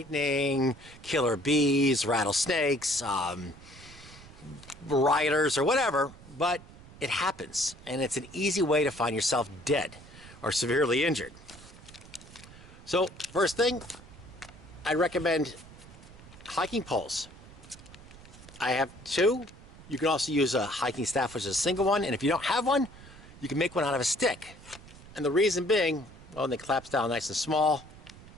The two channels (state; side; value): noise; right; rumble, 19 dB below the sound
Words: killer bees, rattlesnakes, riders, or whatever, but it happens, and it's an easy way to find yourself dead or severely injured. So, first thing, I recommend hiking poles. I have two. You can also use a hiking staff, which is a single one, and if you don't have one, you can make one out of a stick. And the reason being, well, it claps down nice and small.